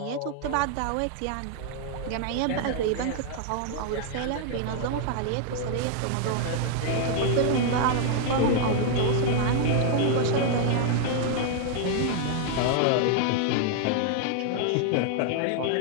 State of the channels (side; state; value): both; different; correlation 0.00